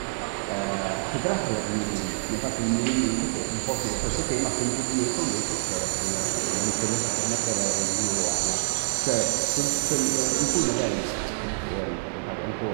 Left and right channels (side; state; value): left; silent; digital silence